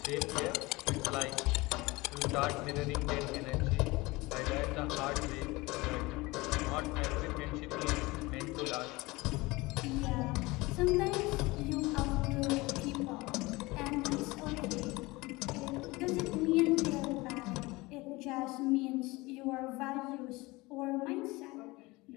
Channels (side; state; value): right; quieter; 22.3 dB